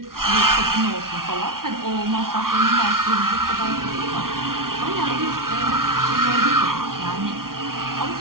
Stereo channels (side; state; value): left; late; 0.92 ms